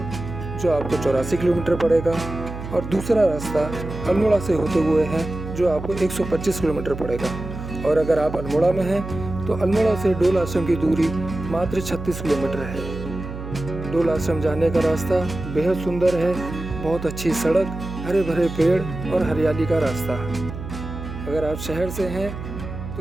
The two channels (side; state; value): right; noise; hum, 9 dB below the sound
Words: जो आपको 84 किलोमीटर पड़ेगा, और दूसरा रास्ता अल्मोड़ा से होते हुए है जो आपको 125 किलोमीटर पड़ेगा। और अगर आप अल्मोड़ा में हैं तो अल्मोड़ा से डोल आश्रम की दूरी मात्र 36 किलोमीटर है। डोल आश्रम जाने का रास्ता बेहद सुंदर है, बहुत अच्छी सड़क, हरे भरे पेड़ और हरियाली का रास्ता। अगर आप शहर से हैं